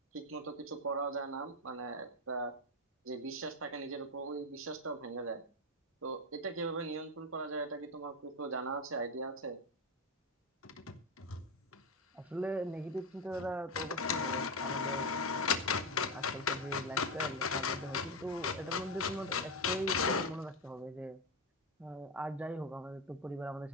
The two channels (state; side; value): normal; both; correlation 0.11